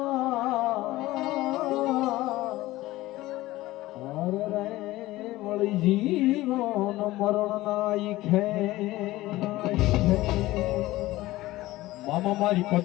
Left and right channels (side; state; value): right; quieter; 17.6 dB